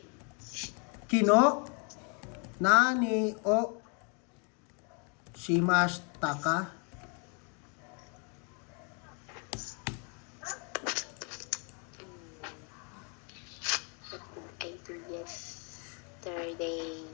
Kino. Nani o. Shimashita ka. I do yesterday.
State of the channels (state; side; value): quieter; right; 36.7 dB